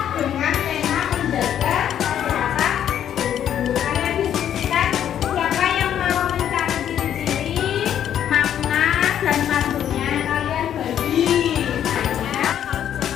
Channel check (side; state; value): right; quieter; 10.0 dB